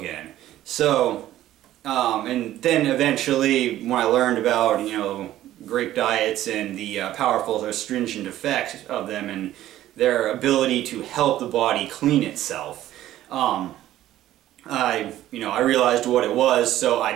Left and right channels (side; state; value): left; quieter; 13.6 dB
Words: So, and then eventually, when I learned about, you know, grape diets and the powerful astringent effects of them and their ability to help the body clean itself, I realized what it was, so I